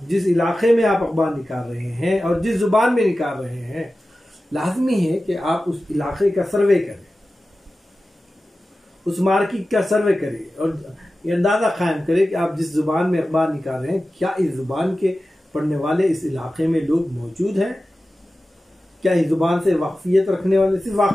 जिस इलाके में आप अखबार निकाल रहे हैं और जिस ज़ुबान में निकाल रहे हैं, लाजमी है कि आप उस इलाके का सर्वे करें, उस मार्केट का सर्वे करें और ये अंदाज़ा कायम करें कि आप जिस ज़ुबान में अखबार निकाल रहे हैं, क्या इस ज़ुबान के पढ़ने वाले इस इलाके में लोग मौजूद हैं? क्या इस ज़ुबान से वाकफियत रखने वाले, सिर्फ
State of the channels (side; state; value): both; normal; correlation 0.95